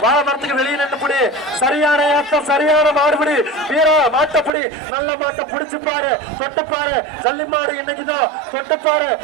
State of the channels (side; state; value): left; drops out; at 4.5 s